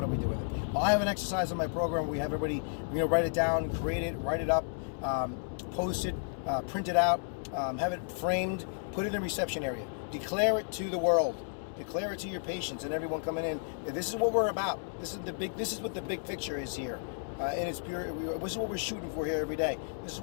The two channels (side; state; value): right; silent; digital silence